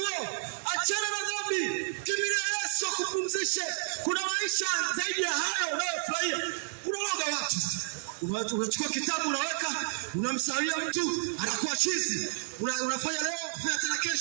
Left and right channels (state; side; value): silent; left; 57 dB below the other